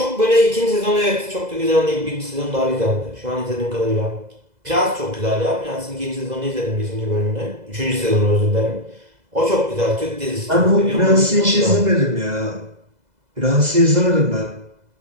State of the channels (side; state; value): left; late; 2.0 ms